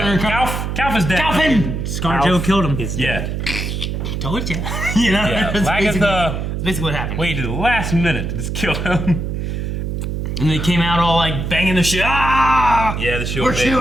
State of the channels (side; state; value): right; noise; hum, 3 dB below the sound